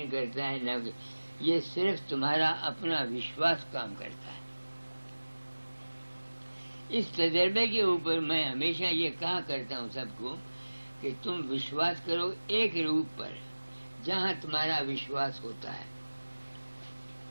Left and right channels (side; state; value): both; inverted; correlation -1.00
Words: کرتا ہے، نہ کوئی، یہ صرف تمہارا اپنا وشواس کام کرتا ہے۔ اس تجربے کے اوپر میں ہمیشہ یہ کہا کرتا ہوں سب کو کہ تم وشواس کرو ایک روپ پر جہاں تمہارا وشواس ہوتا ہے۔